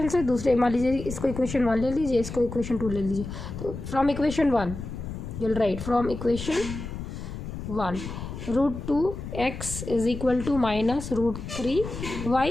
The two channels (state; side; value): noise; left; rumble, 8 dB below the sound